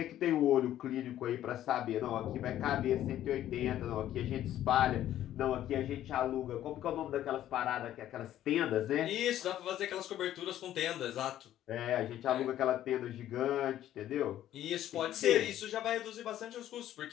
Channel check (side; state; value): right; quieter; 12.3 dB